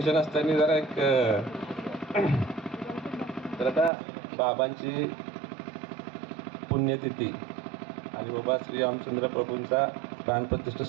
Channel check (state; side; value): drops out; left; at 3.9 s